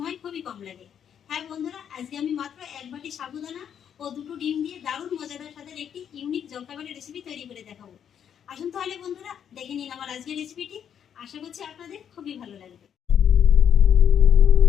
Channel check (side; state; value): right; quieter; 8.7 dB